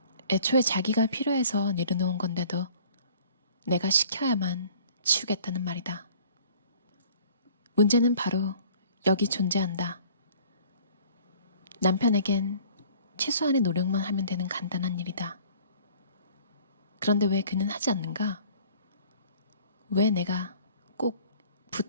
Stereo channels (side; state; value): both; inverted; correlation -0.51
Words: 애초에 자기가 필요해서 내려놓은 건데도 내가 시켜야만 치우겠다는 말이다. 문제는 바로 여기 존재한다. 남편에겐 최소한의 노력만 하면 되는 간단한 일이다. 그런데 왜 그는 하지 않는가? 왜 내가 꼭